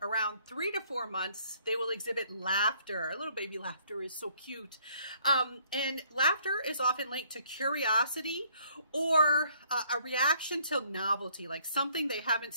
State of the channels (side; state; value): both; inverted; correlation -0.63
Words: around 3 to 4 months, they will exhibit laughter. A little baby laughter is so cute. And laughter is often linked to curiosity or a reaction to novelty, like something they haven't